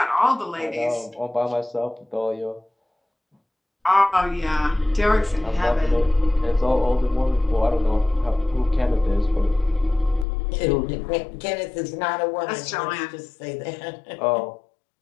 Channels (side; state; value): right; drops out; at 10.2 s